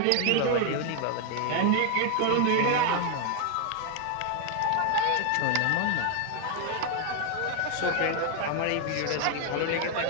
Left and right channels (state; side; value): different; both; correlation 0.00